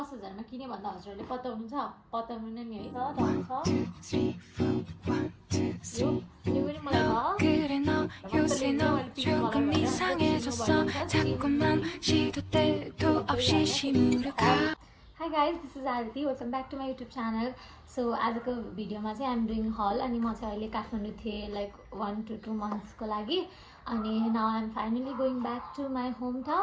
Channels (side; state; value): both; identical; correlation 1.00